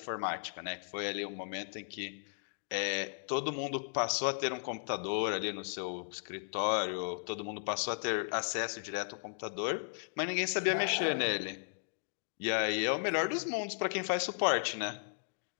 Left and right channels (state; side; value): silent; right; digital silence